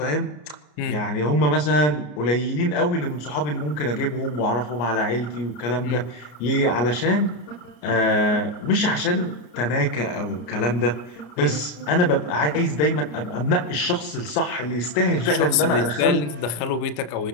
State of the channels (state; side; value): late; right; 33 ms